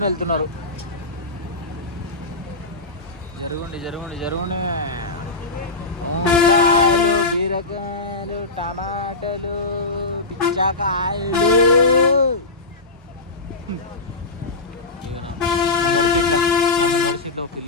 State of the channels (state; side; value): quieter; right; 3.3 dB